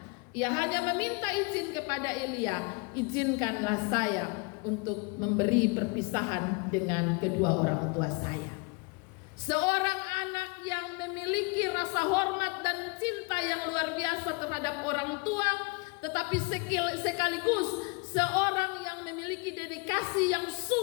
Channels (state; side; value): quieter; right; 29.1 dB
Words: Ia hanya meminta izin kepada Elia, izinkanlah saya untuk memberi perpisahan dengan kedua orang tua saya. Seorang anak yang memiliki rasa hormat dan cinta yang luar biasa terhadap orang tua, tetapi sekaligus seorang yang memiliki dedikasi yang